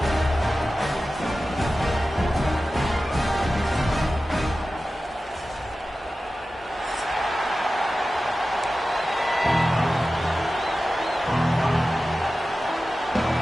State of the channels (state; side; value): normal; both; correlation 0.95